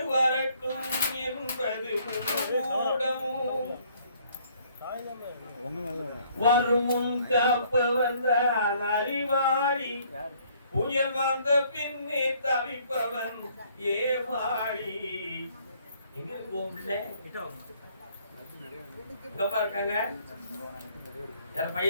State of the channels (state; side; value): inverted; both; correlation -0.62